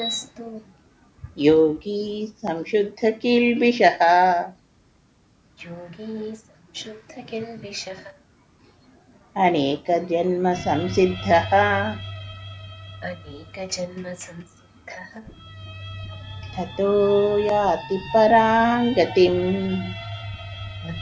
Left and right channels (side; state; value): both; identical; correlation 1.00